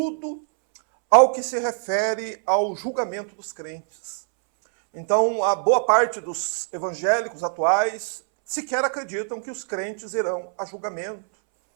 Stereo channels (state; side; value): silent; left; 63 dB below the other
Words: ao que se refere ao julgamento dos crentes. Então, a boa parte dos evangélicos atuais sequer acreditam que os crentes irão a julgamento,